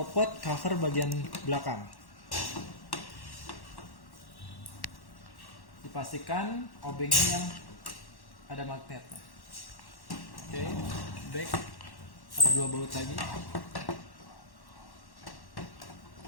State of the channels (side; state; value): right; late; 1.1 ms